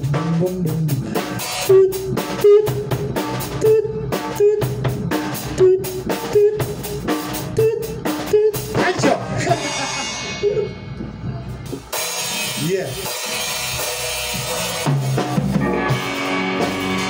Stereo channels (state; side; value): identical; both; correlation 1.00